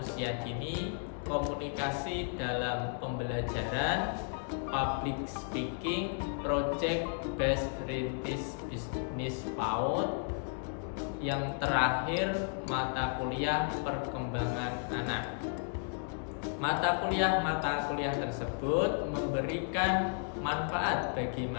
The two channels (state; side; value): silent; right; 55 dB below the other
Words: dini, komunikasi dalam pembelajaran, public speaking, project based rintis bisnis PAUD. Yang terakhir, mata kuliah perkembangan anak. Mata kuliah tersebut memberikan manfaat bagi